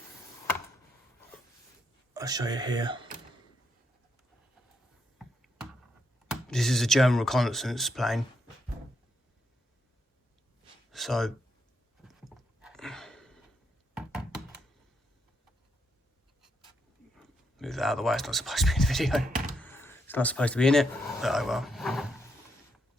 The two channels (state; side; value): normal; both; correlation 0.79